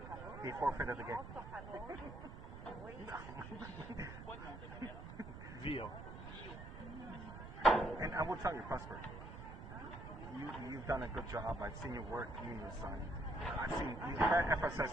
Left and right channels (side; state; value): right; noise; rumble, 11 dB below the sound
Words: He forfeited the game. Vio. And I will tell you, Prosper, you've done a good job. I've seen your work, you and your son. I've seen FSS